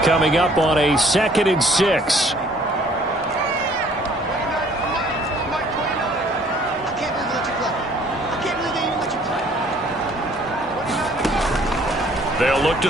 Coming up on a 2nd and 6. They'll look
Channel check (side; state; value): both; normal; correlation 0.58